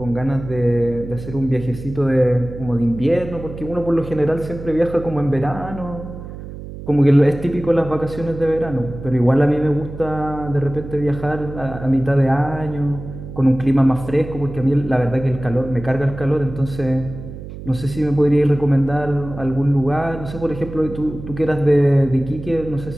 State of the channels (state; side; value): noise; right; hum, 12 dB below the sound